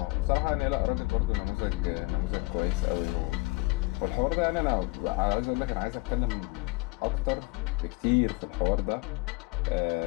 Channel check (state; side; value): quieter; right; 24.9 dB